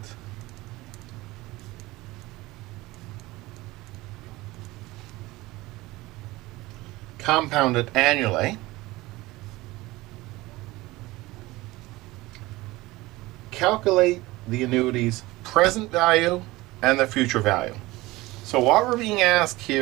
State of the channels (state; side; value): quieter; left; 19.9 dB